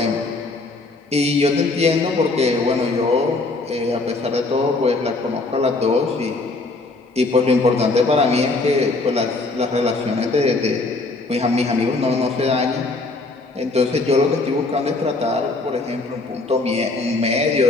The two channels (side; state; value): right; quieter; 3.4 dB